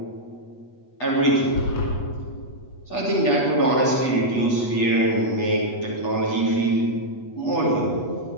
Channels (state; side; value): late; right; 8.2 ms